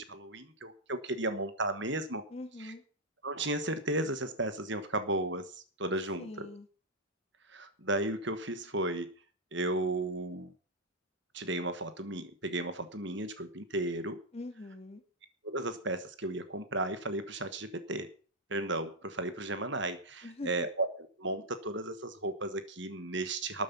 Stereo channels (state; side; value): normal; both; correlation -0.02